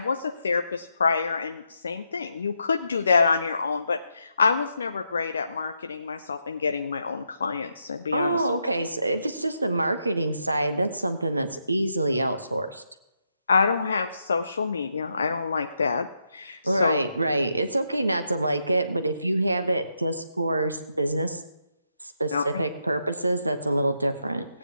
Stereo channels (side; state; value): both; inverted; correlation -0.82